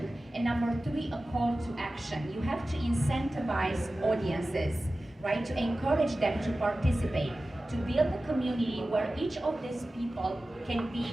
and number three, a call to action. You have to incentivize audiences, right, to encourage them to participate, to build a community where each of these people can be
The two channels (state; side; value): normal; both; correlation 0.95